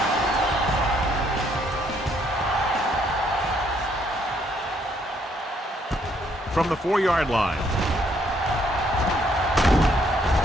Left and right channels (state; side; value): normal; both; correlation 0.69